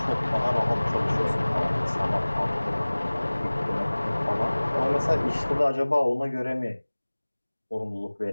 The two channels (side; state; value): both; inverted; correlation -1.00